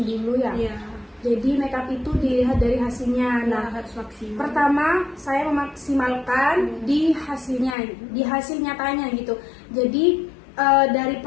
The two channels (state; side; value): drops out; right; at 7.8 s